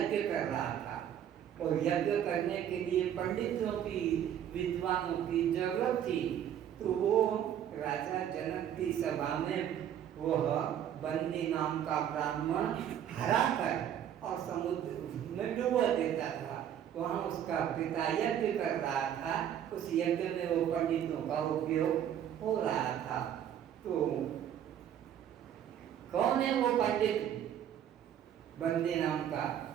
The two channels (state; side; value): quieter; left; 9.9 dB